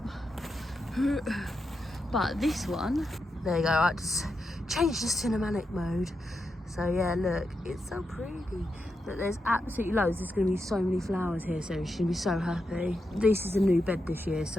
But this one, there you go, I just changed to cinematic mode. So yeah, look, it's so pretty. Look, there's absolutely loads. There's going to be so many flowers here, so she's going to be so happy. This is a new bed this year,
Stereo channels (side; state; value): both; normal; correlation 0.86